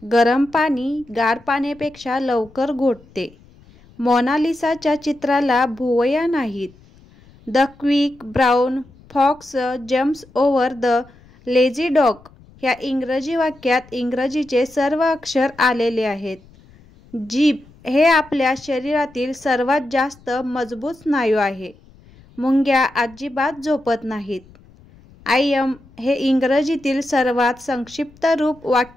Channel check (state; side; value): noise; left; rumble, 26 dB below the sound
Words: गरम पाणी गार पाण्यापेक्षा लवकर घोटते. मोनालिसाच्या चित्राला भुवया नाहीत. The quick brown fox jumps over the lazy dog ह्या इंग्रजी वाक्यात इंग्रजीचे सर्व अक्षर आलेले आहेत. जीभ हे आपल्या शरीरातील सर्वात जास्त मजबूत स्नायू आहे. मुंग्या अजिबात झोपत नाहीत. आय एम हे इंग्रजीतील सर्वात संक्षिप्त रूप